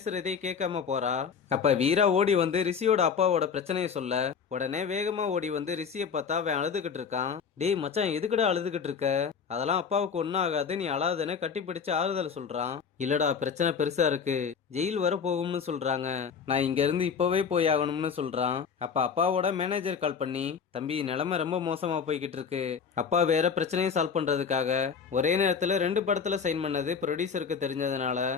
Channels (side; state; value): right; quieter; 6.4 dB